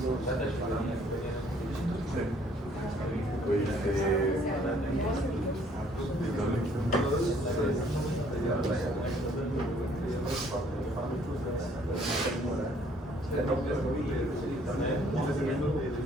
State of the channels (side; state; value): both; normal; correlation 0.61